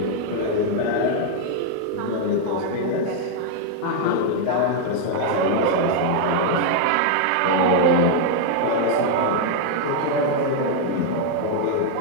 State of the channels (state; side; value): different; both; correlation 0.00